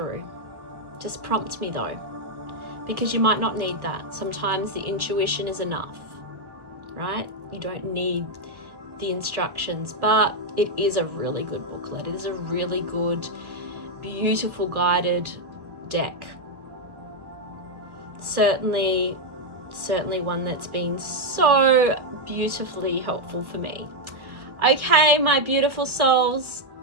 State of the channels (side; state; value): left; late; 1.2 ms